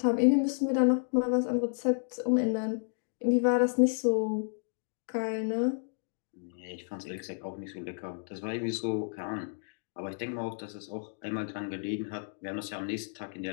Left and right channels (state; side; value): silent; right; digital silence